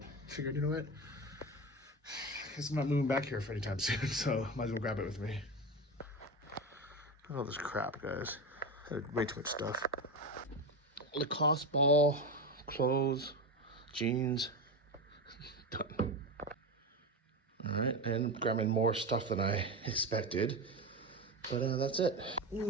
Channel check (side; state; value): both; normal; correlation 0.20